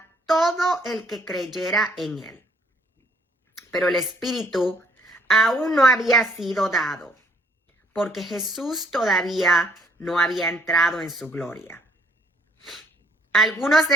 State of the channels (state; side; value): normal; both; correlation 0.64